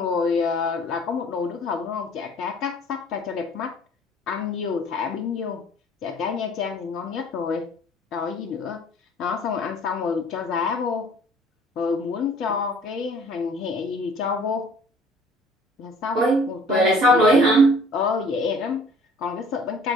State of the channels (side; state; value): both; normal; correlation 0.52